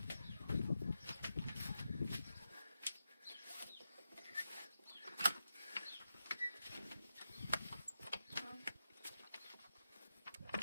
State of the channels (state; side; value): inverted; both; correlation -0.88